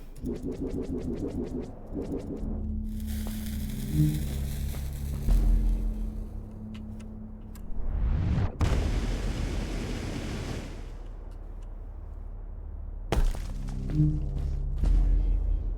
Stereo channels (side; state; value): both; identical; correlation 1.00